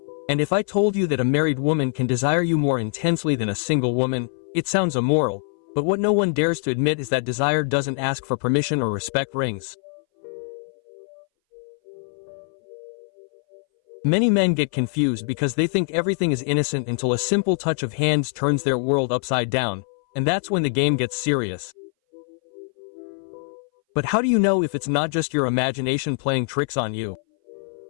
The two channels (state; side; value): silent; right; 60 dB below the other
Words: And if I told you that a married woman can desire you more intensely than a single woman, it sounds immoral, but what no one dares to admit is that desire doesn't ask for permission or respect rings. Many men get confused because they think everything is innocent until a simple touch of hands turns their world upside down, and that's when the game gets serious. But how do you know if it's not just your imagination playing tricks on you?